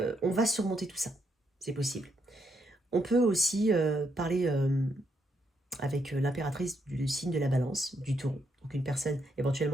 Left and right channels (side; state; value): both; normal; correlation 0.77